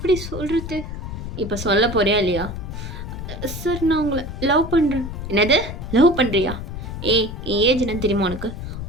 சொல்றது? இப்ப சொல்லப் போறியா இல்லையா? சார் நான் உங்கள லவ் பண்றேன். என்னது? லவ் பண்றியா? ஏய் என் ஏஜ் என்னன்னு தெரியுமா உனக்கு?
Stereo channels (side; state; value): left; noise; rumble, 7 dB below the sound